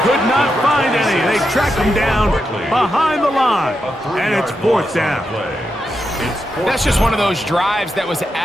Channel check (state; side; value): normal; both; correlation 0.86